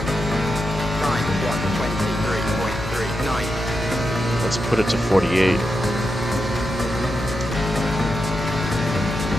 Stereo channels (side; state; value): both; normal; correlation 0.86